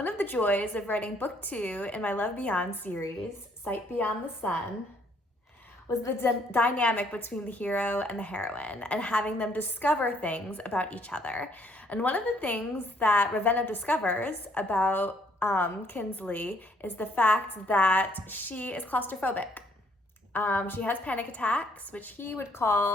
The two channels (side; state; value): both; normal; correlation 0.66